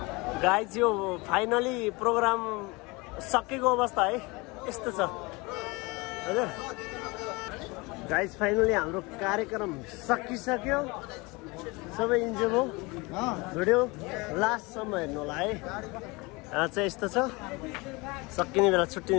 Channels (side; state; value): right; quieter; 25.3 dB